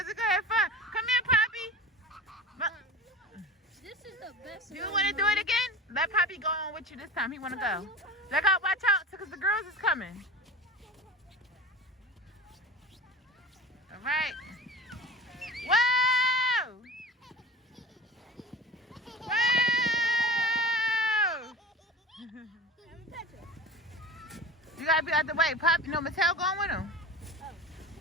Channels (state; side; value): normal; both; correlation 0.36